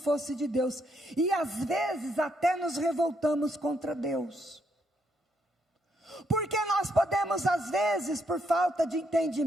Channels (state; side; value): normal; both; correlation 0.75